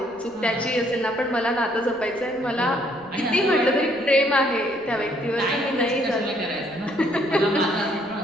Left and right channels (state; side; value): noise; right; rumble, 29 dB below the sound